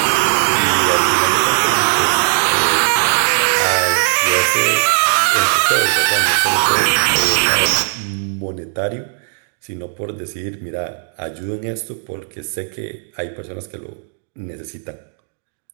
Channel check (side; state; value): left; silent; digital silence